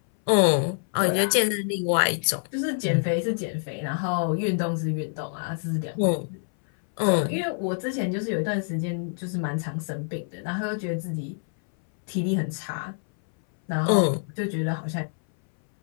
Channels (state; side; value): silent; right; 60 dB below the other